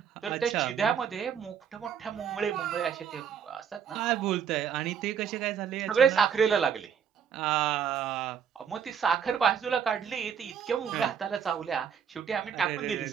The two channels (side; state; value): left; quieter; 7.8 dB